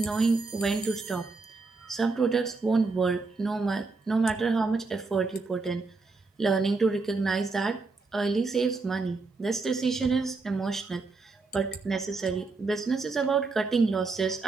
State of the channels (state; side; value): quieter; left; 3.9 dB